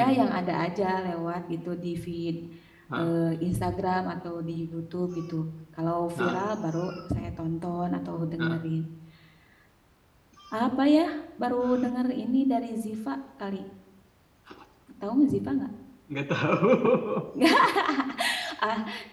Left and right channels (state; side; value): identical; both; correlation 1.00